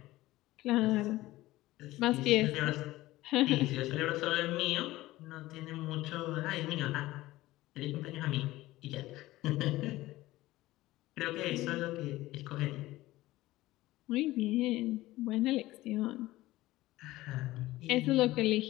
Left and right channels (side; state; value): right; quieter; 17.4 dB